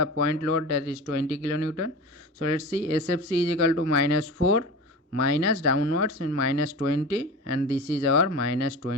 point load, that is 20 kilonewton. So let's see, SFC is equal to minus 4 minus downwards in minus 20, and this is our minus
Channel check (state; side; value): normal; both; correlation 0.31